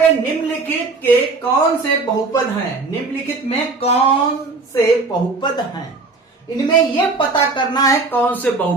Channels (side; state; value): left; quieter; 3.8 dB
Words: निम्नलिखित के कौन से बहुपद हैं? निम्नलिखित में कौन से बहुपद हैं? इनमें यह पता करना है कौन से